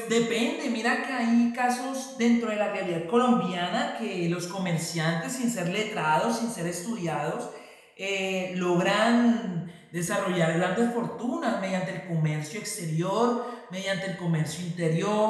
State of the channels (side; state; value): both; identical; correlation 1.00